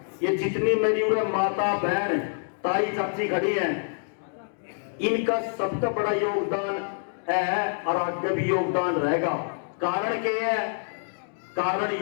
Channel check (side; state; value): right; silent; digital silence